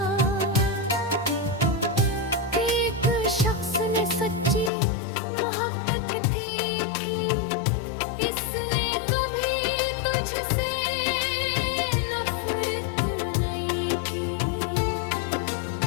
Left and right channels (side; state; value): right; drops out; at 4.7 s